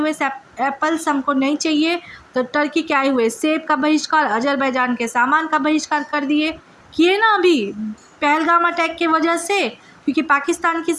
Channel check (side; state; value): both; identical; correlation 1.00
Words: एप्पल्स हमको नहीं चाहिए, तो टर्की के आए हुए सेब का बहिष्कार, अज़रबैजान के सामान का बहिष्कार कर दिए। किए ना अभी पहलगाम अटैक की वजह से, क्योंकि पाकिस्तान के